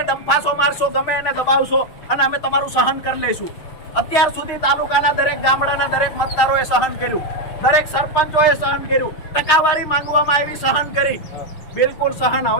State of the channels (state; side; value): late; right; 6.5 ms